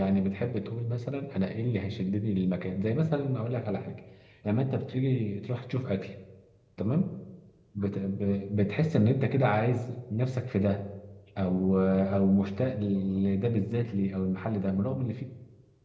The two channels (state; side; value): identical; both; correlation 1.00